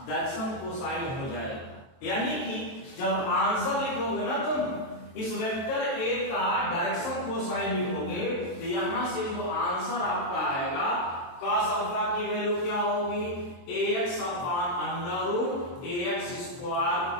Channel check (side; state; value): right; late; 23 ms